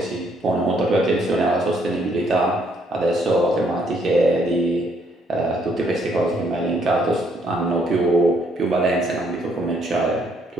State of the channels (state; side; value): normal; both; correlation 0.69